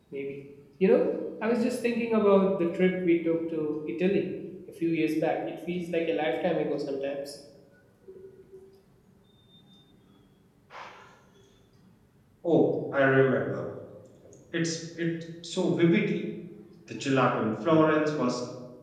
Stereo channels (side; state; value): both; identical; correlation 1.00